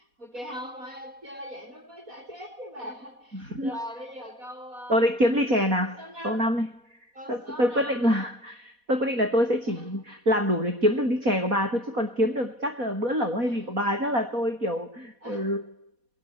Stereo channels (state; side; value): late; left; 4.1 ms